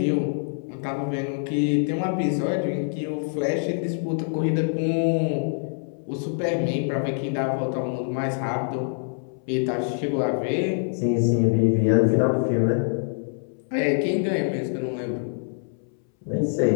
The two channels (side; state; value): right; silent; 62 dB below the other